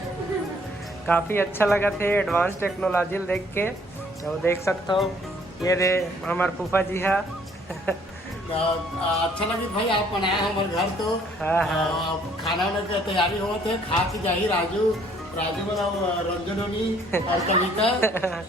काफ़ी अच्छा लगा थे एडवांस टेक्नोलॉजी देख के। तो देख सकते हो ये रे हमार फूफा जी है। अच्छा लगी भाई, आप बनाए हमारे घर तो खाना वाना की तैयारी हो थे, खा के जाही राजू वाला रंजनोनी और कविता।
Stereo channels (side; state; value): both; normal; correlation 0.61